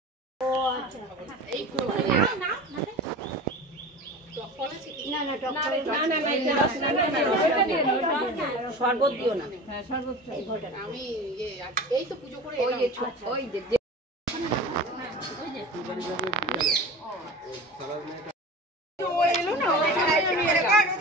না না টক না না না, এটা রস না, না, না, ওটা দিয়ে দাও, ওটা দিয়ে দাও। শরবত দিও না। হ্যাঁ শরবত আমি এই তো পুজো করে ওই যে ওই যে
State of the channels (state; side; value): normal; both; correlation 0.34